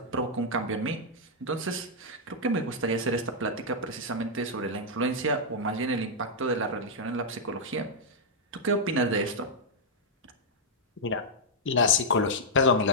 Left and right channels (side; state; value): both; normal; correlation -0.06